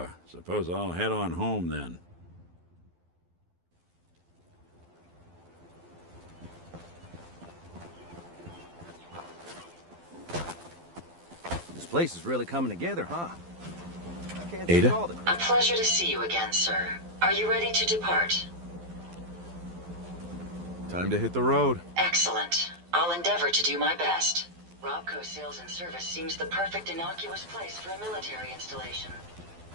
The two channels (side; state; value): left; late; 12 ms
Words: Suppose I'll head on home then. This place is really coming together, huh? I can't Ada? take all the A pleasure to see you again, sir. Are you ready to depart? Time to hit the road. Excellent. I'll endeavor to do my best. Robco Sales and Service seems the perfect innocuous place for a military installation.